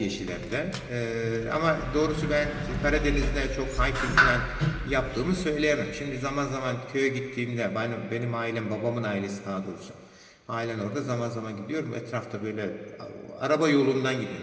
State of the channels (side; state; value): both; identical; correlation 1.00